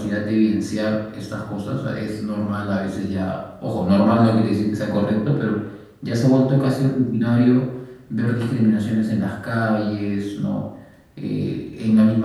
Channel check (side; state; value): both; identical; correlation 1.00